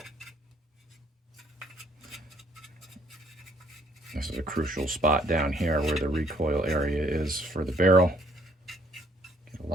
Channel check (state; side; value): normal; both; correlation 0.64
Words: This is a crucial spot down here where the recoil area is for the barrel. Get a